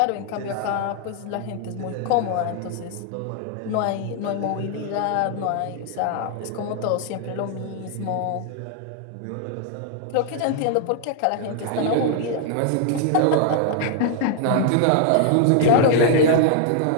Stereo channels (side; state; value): both; different; correlation 0.00